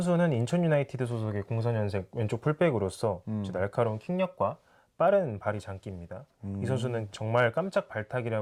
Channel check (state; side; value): identical; both; correlation 1.00